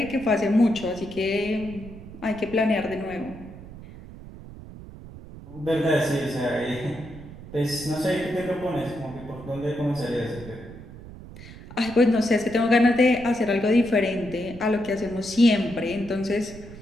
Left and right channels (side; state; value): right; noise; rumble, 15 dB below the sound